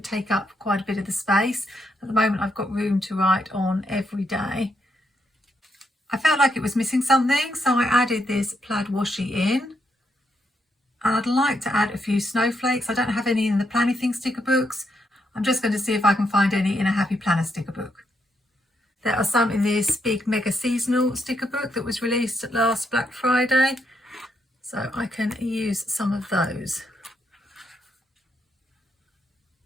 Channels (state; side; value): normal; both; correlation 0.79